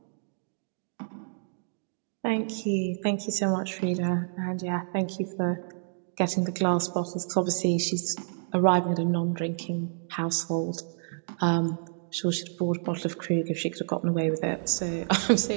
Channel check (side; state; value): left; silent; digital silence